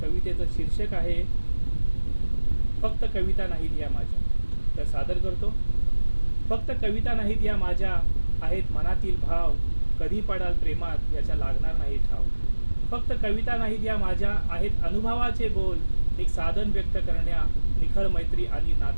शीर्षक आहे फक्त कविता नाहीत या माझ्या. तर सादर करतो. फक्त कविता नाहीत या माझ्या, आहेत मनातील भाव, कधी पडाल प्रेमात याच्या लागणार नाही ठाव. फक्त कविता नाहीत या माझ्या, आहेत अनुभवाचे बोल, एक साधन व्यक्त करण्या, निखळ मैत्री आणि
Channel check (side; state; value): both; inverted; correlation -1.00